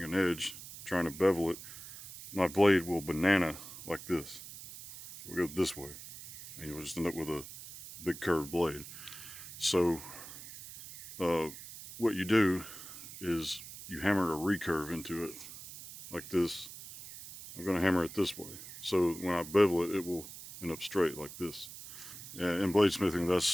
an edge, trying to bevel it, my blade will banana like this. We'll go this way, and you'll just end up with a big curved blade. So what you do is you hammer a recurve into it like this. I'm going to hammer it this way, so when I bevel it, it will end up straight like this. In bladesmithing,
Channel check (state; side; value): noise; right; hiss, 13 dB below the sound